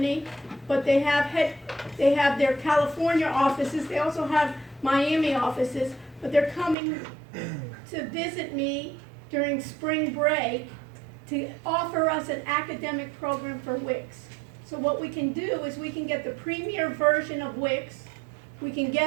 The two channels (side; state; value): left; drops out; at 6.8 s